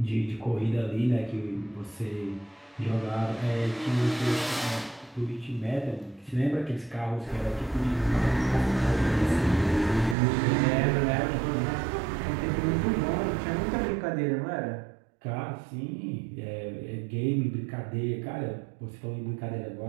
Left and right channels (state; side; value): drops out; left; at 10.2 s